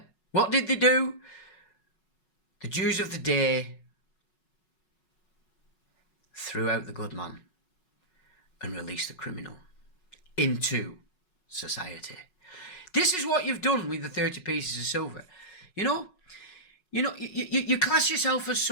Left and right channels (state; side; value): late; right; 5.4 ms